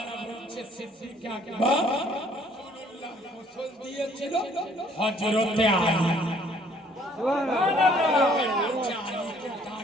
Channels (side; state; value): both; normal; correlation 0.61